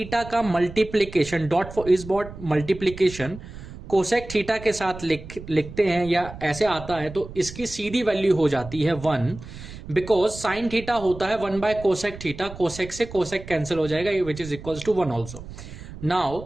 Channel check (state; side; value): noise; right; rumble, 14 dB below the sound